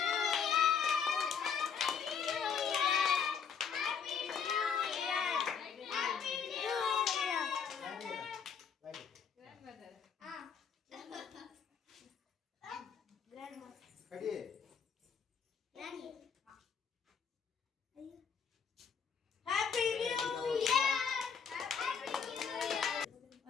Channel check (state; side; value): quieter; right; 6.7 dB